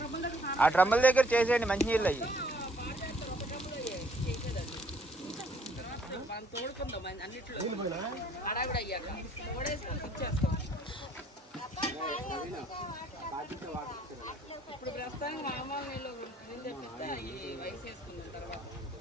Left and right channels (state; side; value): normal; both; correlation 0.62